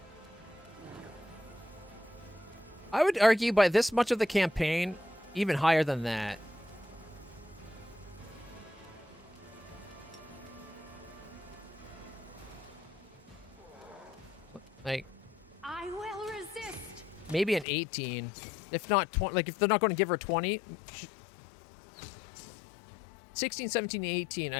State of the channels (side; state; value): right; drops out; at 17.7 s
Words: I would argue by this much of the campaign, even higher than that. Like, I will resist. maybe an 18, if not 20. Like, if they're not going to give her 20, 16, 17, 18,